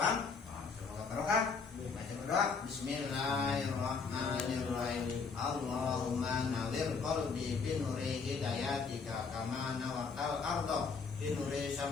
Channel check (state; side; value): quieter; right; 5.1 dB